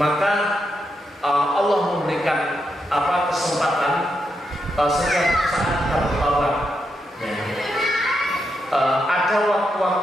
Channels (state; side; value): normal; both; correlation 0.83